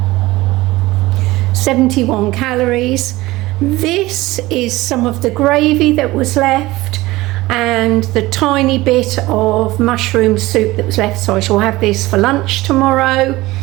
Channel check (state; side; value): quieter; left; 19.1 dB